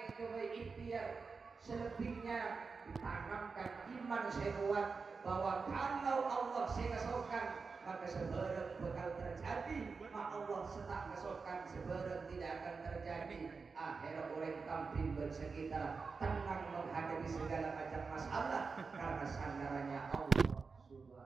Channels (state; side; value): quieter; left; 4.8 dB